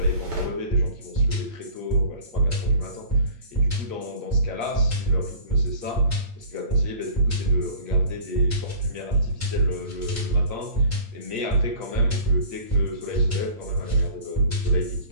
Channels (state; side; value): late; left; 8.5 ms